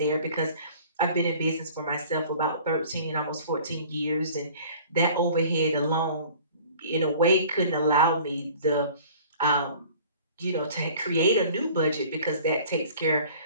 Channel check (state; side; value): inverted; both; correlation -0.48